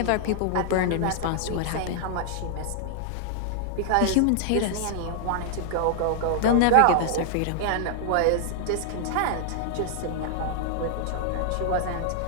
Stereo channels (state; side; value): different; both; correlation -0.01